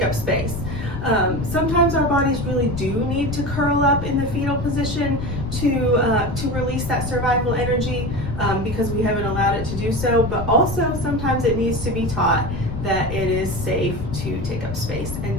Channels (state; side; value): noise; left; rumble, 7 dB below the sound